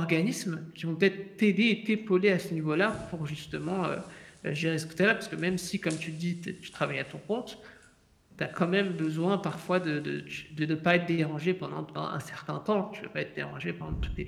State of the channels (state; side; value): identical; both; correlation 1.00